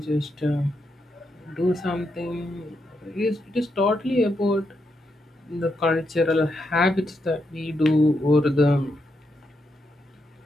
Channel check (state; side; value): normal; both; correlation 0.82